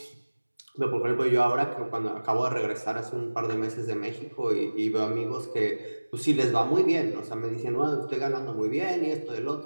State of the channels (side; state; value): both; inverted; correlation -1.00